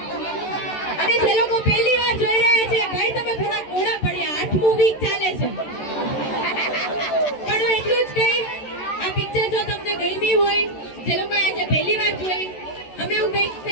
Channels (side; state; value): right; late; 13 ms